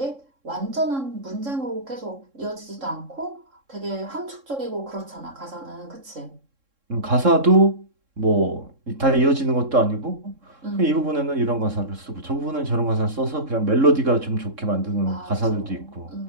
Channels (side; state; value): left; late; 3.7 ms